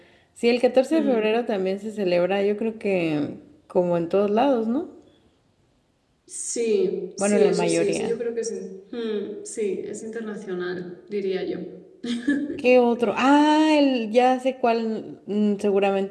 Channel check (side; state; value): both; identical; correlation 1.00